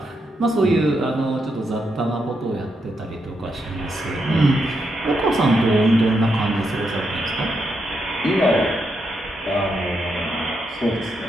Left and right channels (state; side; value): normal; both; correlation 0.82